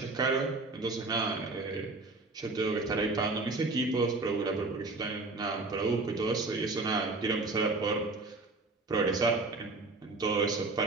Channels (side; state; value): left; quieter; 3.4 dB